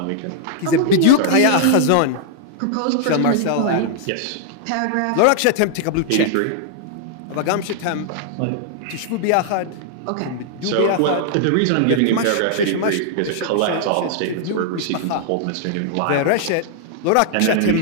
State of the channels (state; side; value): different; both; correlation -0.01